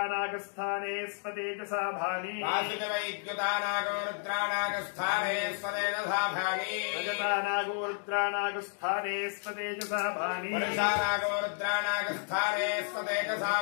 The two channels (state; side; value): silent; right; 57 dB below the other